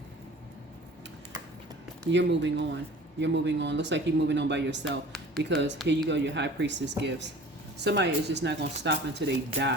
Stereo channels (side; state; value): both; normal; correlation 0.44